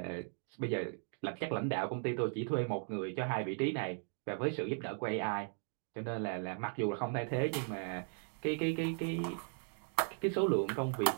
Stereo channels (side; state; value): left; silent; 53 dB below the other